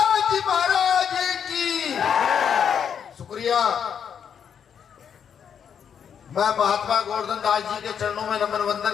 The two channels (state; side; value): quieter; right; 7.8 dB